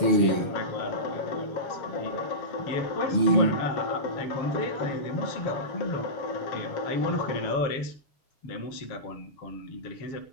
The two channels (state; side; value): late; right; 6.8 ms